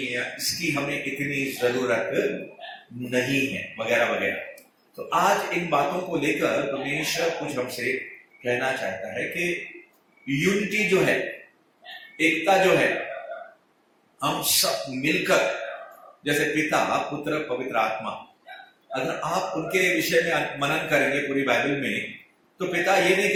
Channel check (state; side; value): identical; both; correlation 1.00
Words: या इसकी हमें इतनी जरूरत नहीं है, वगैरह वगैरह। तो आज इन बातों को लेकर परमेश्वर कुछ हमसे कहना चाहता है कि यूनिटी जो है, एकता जो है, हम सब मिलकर, जैसे पिता पुत्र पवित्र आत्मा, अगर आप उनके विषय में मनन करेंगे पूरी बाइबल में, तो पिता ये नहीं